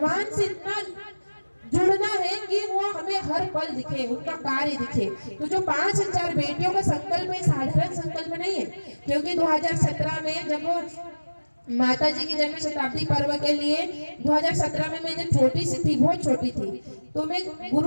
से इतना जुड़ना है कि वो हमें हर पल दिखे, उनका कार्य दिखे। तो जो 5000 बेटियों का संकल्प है, साधारण संकल्प नहीं है। क्योंकि 2017 में जब माता जी की जन्म शताब्दी पर्व के लिए 2017 में मैं जब छोटी सी थी, बहुत छोटी थी, तो मैं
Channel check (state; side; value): inverted; both; correlation -1.00